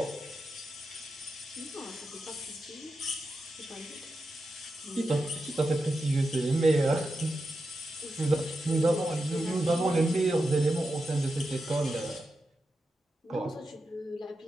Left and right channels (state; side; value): normal; both; correlation 0.89